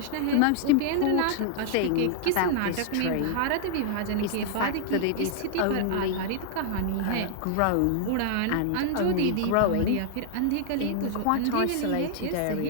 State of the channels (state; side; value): different; both; correlation -0.01